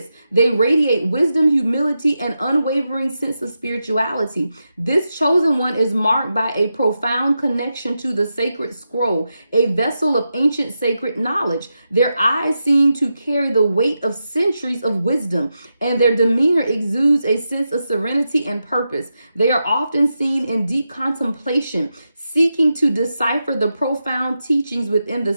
They radiate wisdom, humility, and unwavering sense of spirituality. This chosen one is marked by a profound connection to the sacred scroll, a vessel of ancient sacred knowledge. Their eyes seem to carry the weight of centuries of wisdom, and their demeanor exudes a sense of serenity and purpose. They are often seen in deep contemplation, seeking to decipher the profound teachings within the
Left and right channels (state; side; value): inverted; both; correlation -0.88